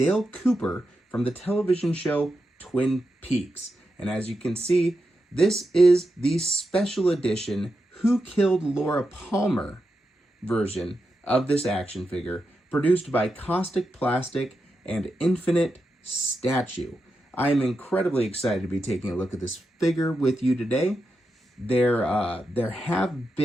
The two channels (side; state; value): both; normal; correlation 0.87